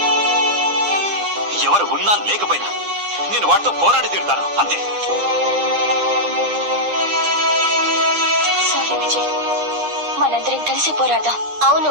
ఎవరు ఉన్నా లేకపోయినా నేను వాటితో పోరాడి తీరుతాను, అంతే. సారీ విజయ్, మనందరం కలిసి పోరాడదాం.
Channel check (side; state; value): left; late; 9.9 ms